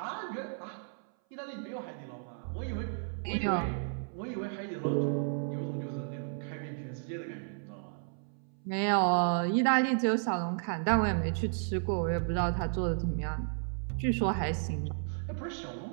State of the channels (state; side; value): silent; left; 56 dB below the other